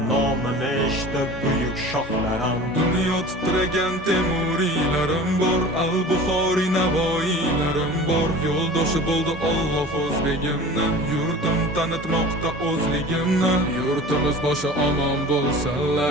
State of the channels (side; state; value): both; normal; correlation 0.39